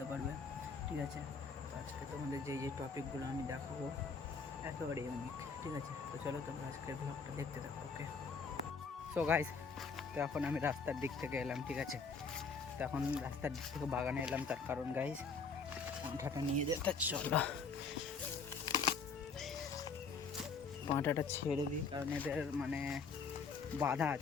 পারবে, ঠিক আছে। তো আজকে তোমাদের যে টপিকগুলো আমি দেখাবো একেবারে ইউনিক, ঠিক আছে। তো চলো তোমরা আজকের ব্লগটা দেখতে থাকো, ওকে। সো গাইস, তো এখন আমি রাস্তার দিক থেকে এলাম, ঠিক আছে। তো এখন রাস্তার দিক থেকে বাগানে এলাম, তার কারণ গাইস পাঁঠাটা নিয়ে যেতে, চলো পাঁঠাটা ছেড়ে দিই, কারণ এদের মানে বাধা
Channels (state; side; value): quieter; right; 4.9 dB